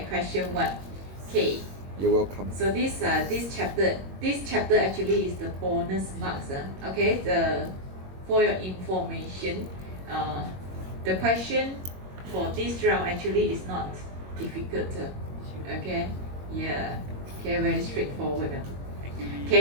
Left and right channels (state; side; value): late; left; 21 ms